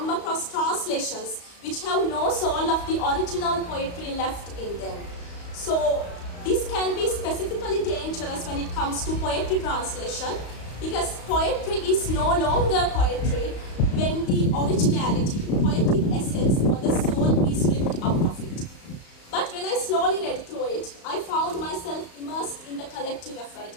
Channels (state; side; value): late; right; 35 ms